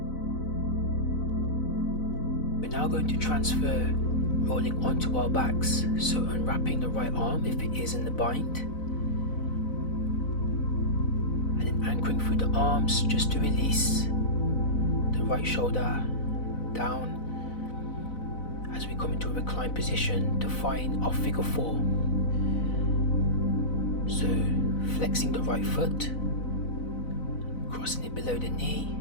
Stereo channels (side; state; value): right; late; 4.0 ms